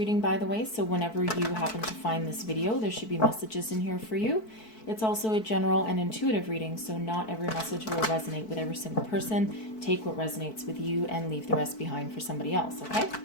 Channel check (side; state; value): right; late; 4.6 ms